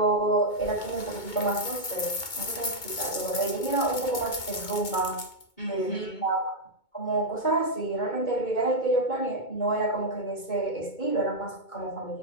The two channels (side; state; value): right; late; 2.2 ms